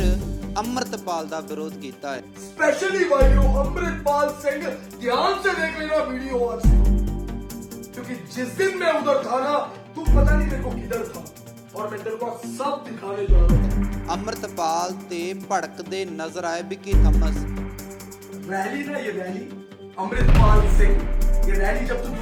अमृतपाल ਦਾ ਵਿਰੋਧ ਕੀਤਾ ਹੈ। स्पेशली भाइयों अमृतपाल सिंह ध्यान से देख लेना वीडियो आज, क्योंकि जिस दिन मैं उधर था ना तू पता नहीं मेरे को किधर था और मैं तेरे को सब दिखाने जा रहा था। अमृतपाल ते भड़कते नजर आए विक्की थॉमस। रैली ना ये रैली अमृतपाल सिंह, ये रैली जब तू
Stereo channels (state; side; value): identical; both; correlation 1.00